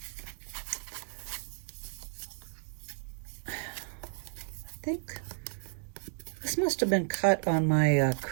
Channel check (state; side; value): silent; left; 56 dB below the other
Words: I think this must have been cut on my